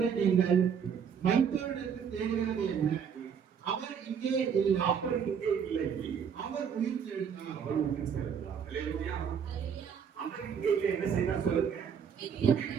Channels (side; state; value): left; quieter; 7.3 dB